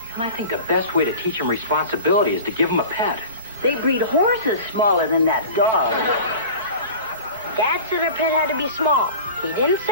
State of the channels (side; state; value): both; inverted; correlation -0.37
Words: And I think the best way to teach him responsibility is to give him a pet. They breed horses smaller than that dog. Dad said our pet had to be small. He didn't say